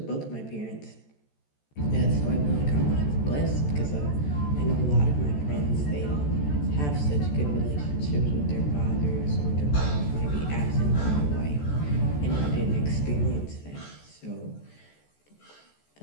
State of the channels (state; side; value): late; right; 14 ms